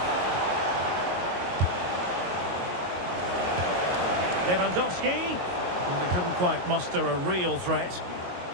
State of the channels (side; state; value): left; late; 22 ms